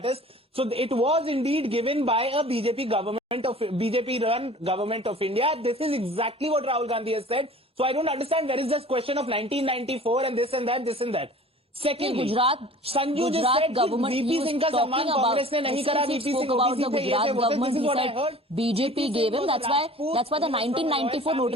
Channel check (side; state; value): both; normal; correlation 0.45